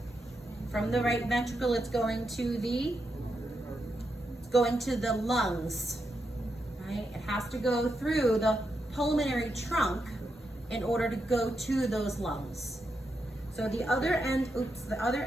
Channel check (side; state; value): both; normal; correlation 0.84